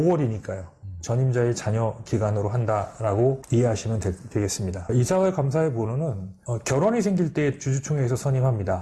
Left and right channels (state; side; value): identical; both; correlation 1.00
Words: 전임자의 자녀 기간으로 한다라고 이해하시면 되겠습니다. 이사와 감사의 번호는 결혼이 생길 때 주주총회에서